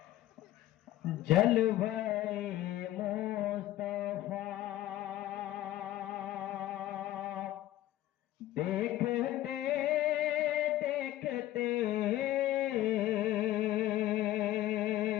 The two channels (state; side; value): quieter; right; 14.6 dB